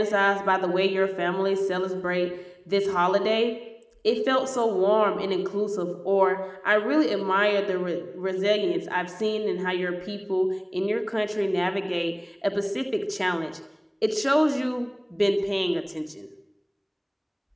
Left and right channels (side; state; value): both; identical; correlation 1.00